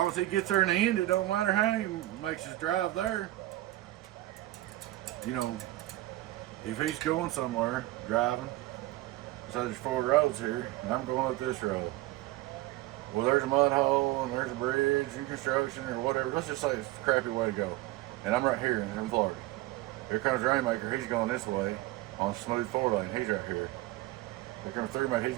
as he gets there in the end, it don't matter how he makes his drive there. You know, if he's going somewhere, driving, so there's 4 roads here, and I'm going up this road. Well, there's a mud hole, and there's a bridge, and construction, or whatever. Let's just say it's a crappy way to go. And I'm right here in Florida. Here comes Rainmaker, he's going this way on smooth 4-lane, he's right here. Here comes 3-mate,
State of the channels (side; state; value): left; quieter; 17.1 dB